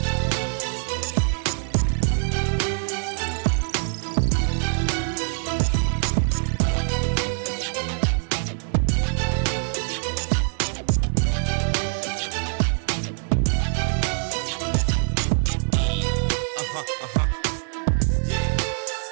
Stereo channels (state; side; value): silent; left; digital silence